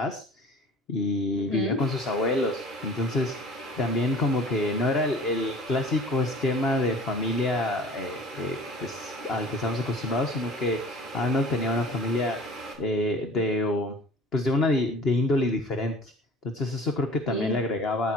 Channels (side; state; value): both; normal; correlation 0.45